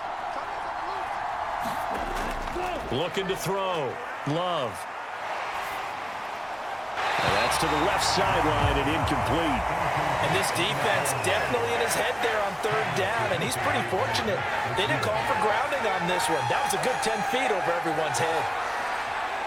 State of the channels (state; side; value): identical; both; correlation 1.00